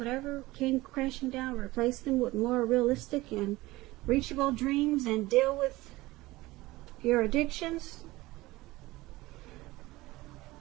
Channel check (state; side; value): quieter; left; 19.5 dB